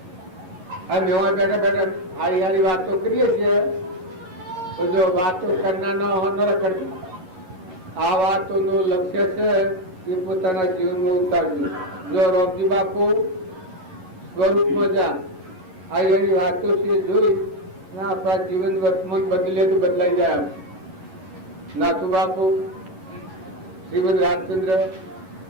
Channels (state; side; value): late; left; 11 ms